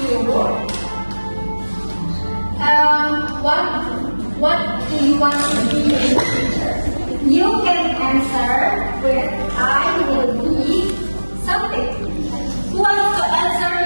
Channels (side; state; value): both; inverted; correlation -1.00